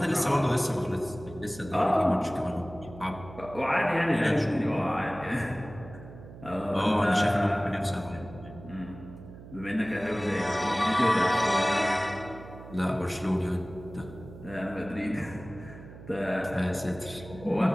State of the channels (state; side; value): noise; right; hum, 16 dB below the sound